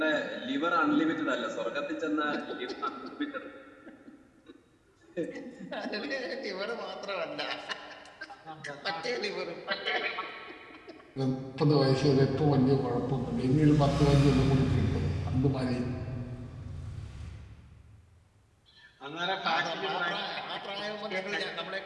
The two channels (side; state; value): both; identical; correlation 1.00